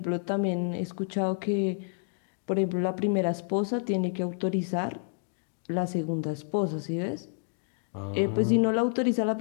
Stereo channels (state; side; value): silent; right; 57 dB below the other